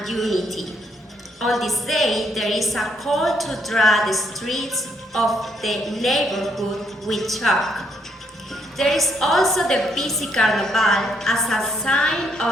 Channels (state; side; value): normal; both; correlation 0.72